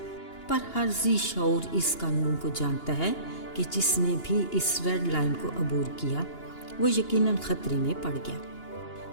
पर हर ज़ी शऊर इस कानून को जानता है कि जिसने भी इस रेड लाइन को अबूर किया वो यकीनन ख़तरे में पड़ गया।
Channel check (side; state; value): right; late; 2.8 ms